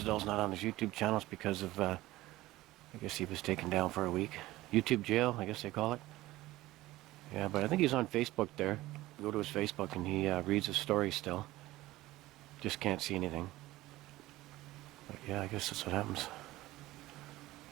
not on his YouTube channels because of, I guess he was taken down for a week. YouTube jail, I guess they call it. Yeah, but I think he's on Facebook there. You go to his Facebook and he reads his story still. Just can't see anything. But yeah, I guess that's what happens.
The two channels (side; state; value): left; quieter; 17.4 dB